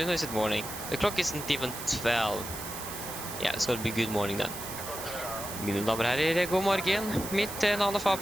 or is it morning? The clock isn't even 12. Yeah, it's going to be good morning then. Mine damer og herrer, god morgen. Mitt navn er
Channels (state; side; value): noise; right; hiss, 9 dB below the sound